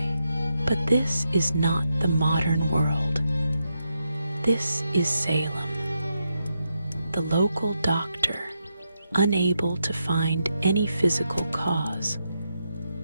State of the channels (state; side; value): inverted; both; correlation -0.84